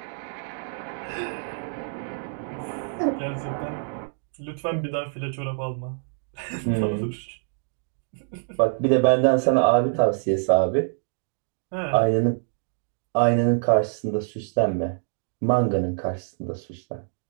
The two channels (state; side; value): silent; left; digital silence